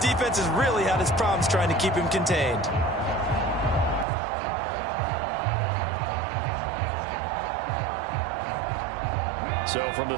has really had its problems trying to keep him contained. So from the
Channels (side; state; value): left; drops out; at 4.0 s